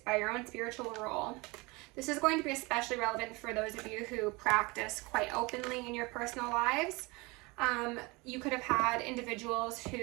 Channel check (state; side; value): quieter; left; 25.2 dB